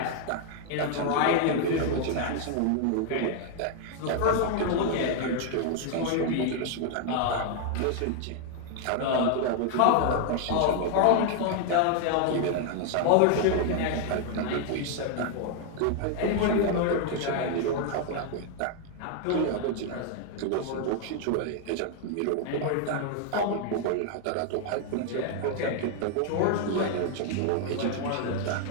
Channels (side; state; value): both; different; correlation 0.00